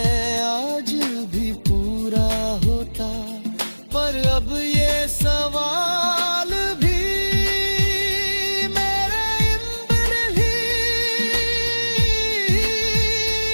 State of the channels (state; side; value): inverted; both; correlation -1.00